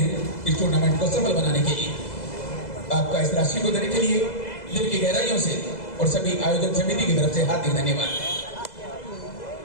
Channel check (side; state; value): right; late; 2.0 ms